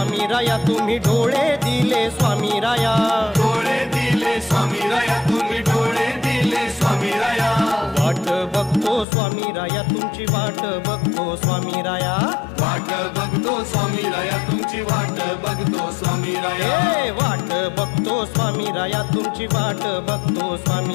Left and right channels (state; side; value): drops out; right; at 9.1 s